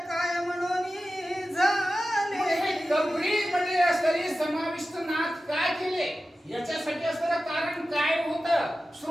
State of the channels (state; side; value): normal; both; correlation 0.94